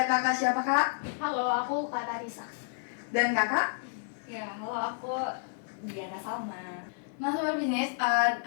kakak siapa kak? Halo, aku Kak Tarisa. Dan kakak? Ya, halo, aku Diana Salma. Nah Sobat Bisnis,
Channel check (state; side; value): silent; right; digital silence